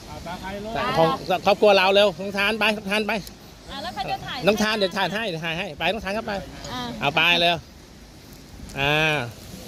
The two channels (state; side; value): identical; both; correlation 1.00